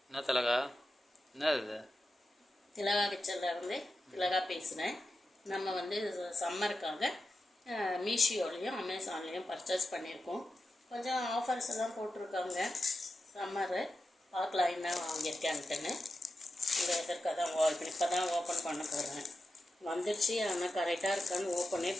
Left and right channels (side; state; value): both; normal; correlation 0.90